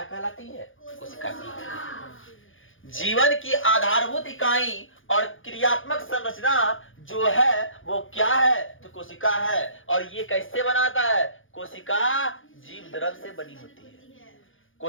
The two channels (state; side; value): late; right; 0.58 ms